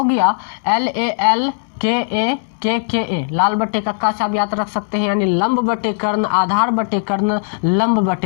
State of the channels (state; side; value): silent; right; digital silence